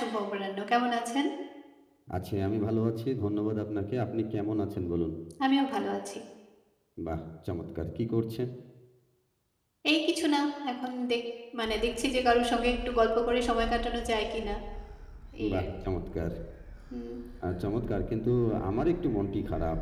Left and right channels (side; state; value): both; identical; correlation 1.00